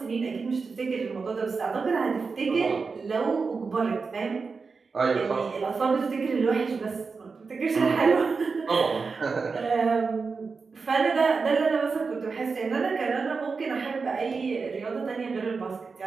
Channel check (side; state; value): left; quieter; 4.7 dB